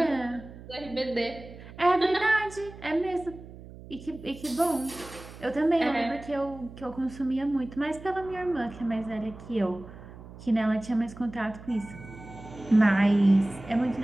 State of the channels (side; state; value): right; noise; hum, 16 dB below the sound